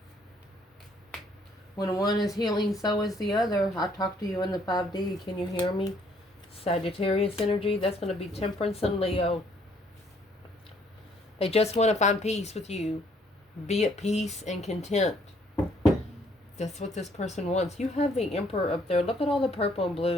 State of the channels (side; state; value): both; normal; correlation 0.65